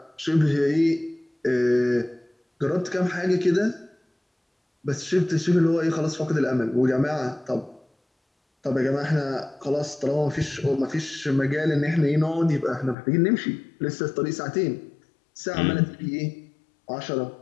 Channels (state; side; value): drops out; right; at 13.0 s